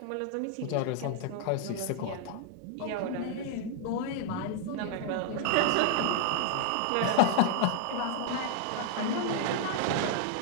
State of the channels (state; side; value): different; both; correlation 0.00